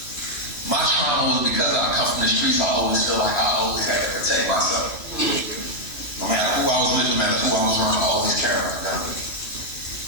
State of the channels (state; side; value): late; right; 2.8 ms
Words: my trauma was because I come from the streets, I always feel like I always had to protect myself. No matter who I was with, no matter who I was around, I always carried my gun with me.